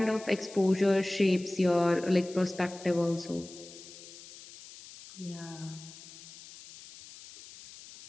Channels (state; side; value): noise; left; hiss, 17 dB below the sound